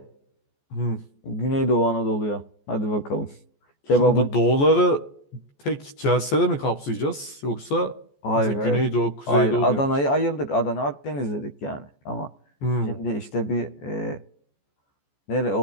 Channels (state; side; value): late; right; 14 ms